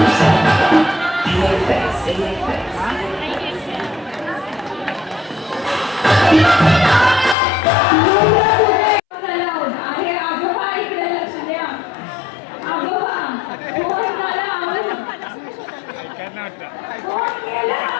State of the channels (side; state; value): right; drops out; at 7.4 s